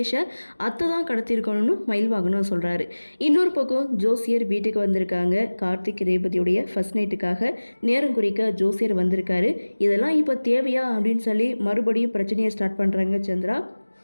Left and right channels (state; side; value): inverted; both; correlation -1.00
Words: அத்தை தான் கடத்திருக்கணும்னு மயில் வாங்கணும்னு சொல்கிறாரு. இன்னொரு பக்கம் ஜோசியர் வீட்டுக்கு வந்திருக்காங்க. கார்த்திக் ரேவதியுடைய ஃபர்ஸ்ட் நைட்டுக்காக நேரம் குறிக்க ஜோசியர் வந்திருக்காரு. இதெல்லாம் இப்போ தேவையா அப்படின்னு சொல்லி மறுபடியும் பிரச்சனையை ஸ்டார்ட் பண்ணுறாங்க சந்திரா.